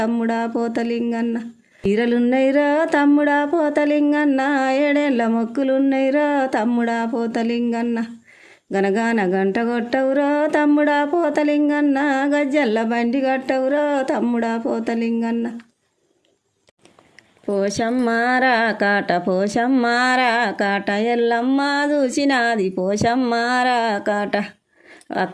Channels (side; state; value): both; identical; correlation 1.00